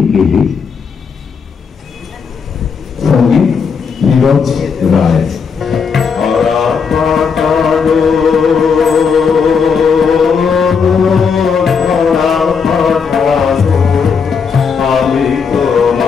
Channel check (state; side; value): quieter; right; 5.9 dB